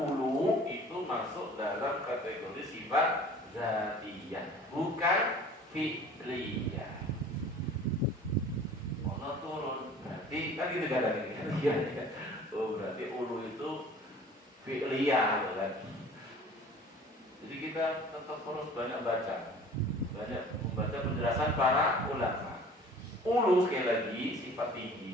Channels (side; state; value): both; normal; correlation 0.46